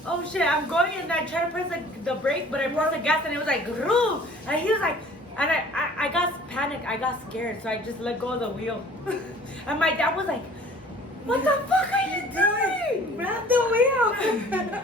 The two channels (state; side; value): normal; both; correlation 0.49